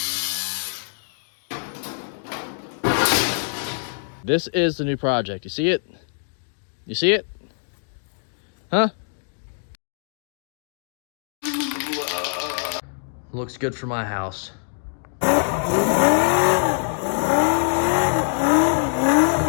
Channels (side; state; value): right; silent; digital silence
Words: This is the new project. You see it? You see it? Huh? Looks good for my house.